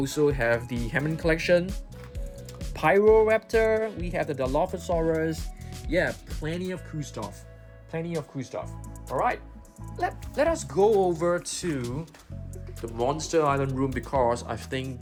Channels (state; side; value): identical; both; correlation 1.00